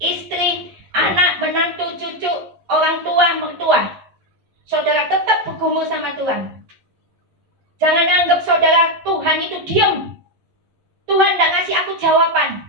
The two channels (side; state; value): left; late; 11 ms